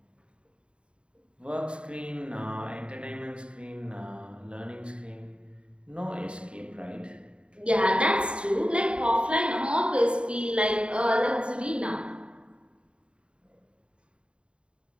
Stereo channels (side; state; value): left; late; 0.055 ms